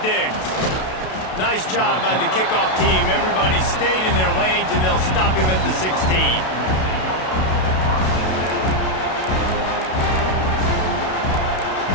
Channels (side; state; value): right; late; 32 ms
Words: Diggs. Nice job by the kickoff team. Everybody stayed in their lanes, and they'll stop him at the 16.